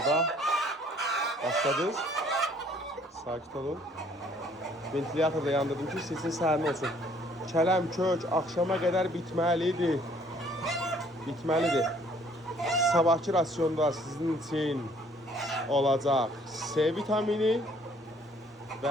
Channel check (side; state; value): both; normal; correlation 0.60